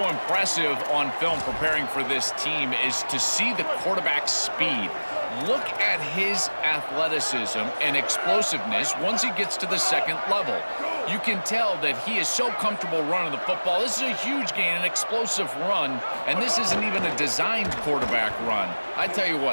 impressive on film preparing for this team is to see the quarterback's speed. Look at his athleticism and explosiveness once he gets to the second level. You can tell that he is so comfortable running the football. This is a huge gain, an explosive run, and this isn't even a designed quarterback run. I tell you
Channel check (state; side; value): inverted; both; correlation -1.00